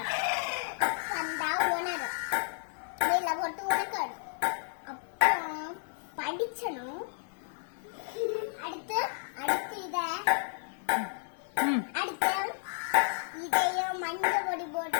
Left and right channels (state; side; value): silent; right; digital silence